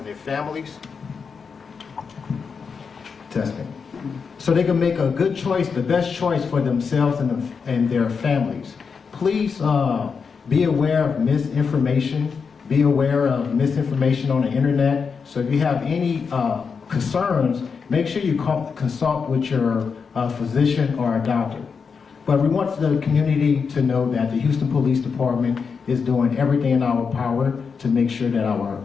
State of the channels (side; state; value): right; quieter; 5.7 dB